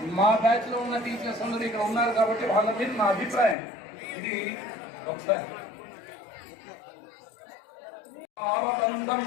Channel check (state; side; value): drops out; right; at 3.6 s